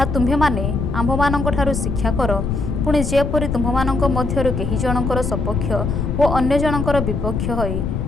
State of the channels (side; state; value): left; noise; rumble, 1 dB below the sound